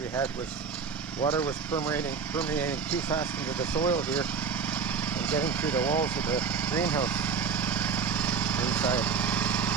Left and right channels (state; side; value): quieter; left; 5.8 dB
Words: had was water was permeating too fast into the soil here and getting through the walls of the greenhouse inside.